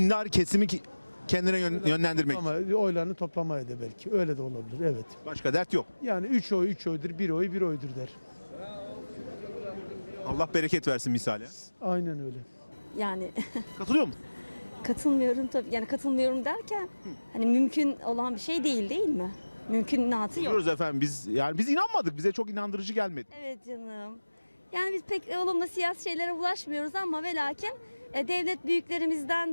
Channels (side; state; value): both; inverted; correlation -1.00